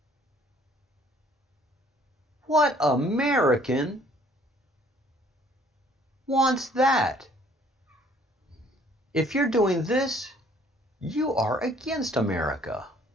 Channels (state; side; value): normal; both; correlation 0.59